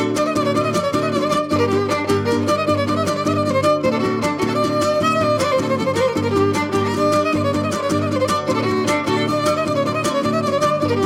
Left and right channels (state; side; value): identical; both; correlation 1.00